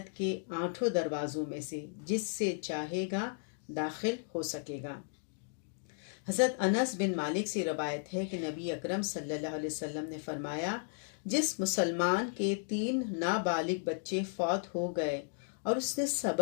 کے 8 دروازوں میں سے جس سے چاہے گا داخل ہو سکے گا۔ حضرت انس بن مالک سے روایت ہے کہ نبی اکرم صلی اللہ علیہ وسلم نے فرمایا، جس مسلمان کے 3 نابالغ بچے فوت ہو گئے اور اس نے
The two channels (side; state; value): right; silent; digital silence